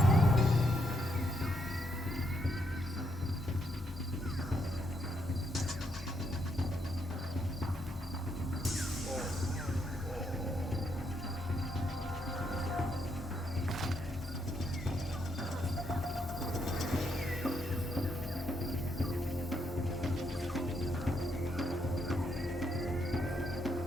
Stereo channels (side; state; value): both; normal; correlation 0.77